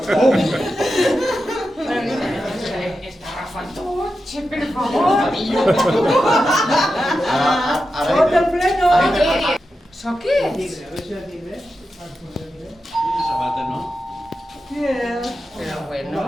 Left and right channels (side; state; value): both; normal; correlation 0.90